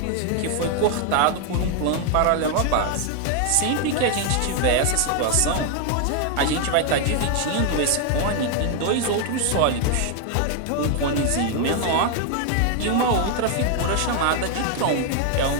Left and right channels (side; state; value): both; different; correlation 0.00